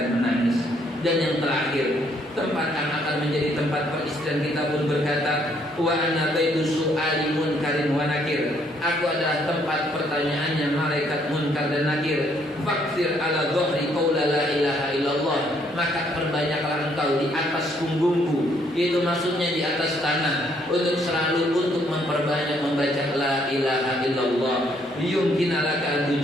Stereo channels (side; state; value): both; normal; correlation 0.68